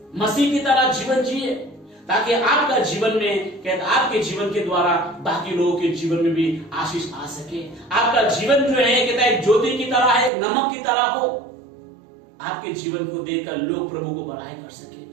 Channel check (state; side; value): drops out; left; at 10.3 s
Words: मसीह की तरह जीवन जिए, ताकि आपका जीवन में कहते आपके जीवन के द्वारा बाकी लोगों के जीवन में भी आशीष आ सके। आपका जीवन जो है कहता है एक ज्योति की तरह है, एक नमक की तरह हो। आपके जीवन को देखकर लोग प्रभु को बड़ाई कर